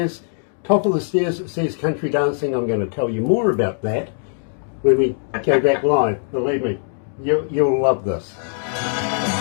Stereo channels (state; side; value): silent; right; 65 dB below the other